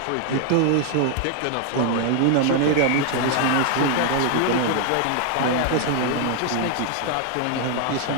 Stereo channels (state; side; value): different; both; correlation 0.00